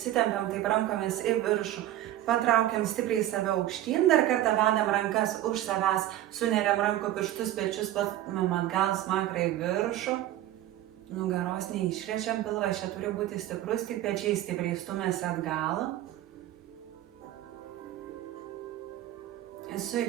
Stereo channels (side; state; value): left; quieter; 13.7 dB